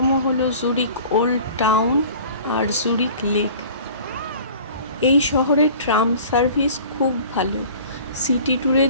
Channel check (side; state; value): both; inverted; correlation -0.45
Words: হলো জুরিখ ওল্ড টাউন আর জুরিখ লেক। এই শহরের ট্রাম সার্ভিস খুব ভালো। সিটি